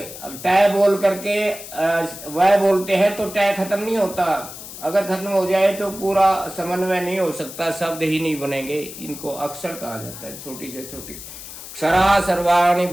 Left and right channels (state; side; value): noise; left; hiss, 13 dB below the sound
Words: टै बोल करके वह बोलते हैं तो टै खत्म नहीं होता। अगर खत्म हो जाए तो पूरा समन्वय नहीं हो सकता, शब्द ही नहीं बनेंगे। इनको अक्षर कहा जाता है, छोटी से छोटी। क्षरा सर्वाणि